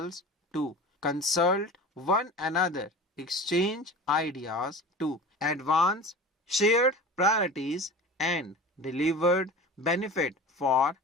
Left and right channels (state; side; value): normal; both; correlation 0.35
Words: to consult one another, exchange ideas to advance shared priorities and delivered benefit for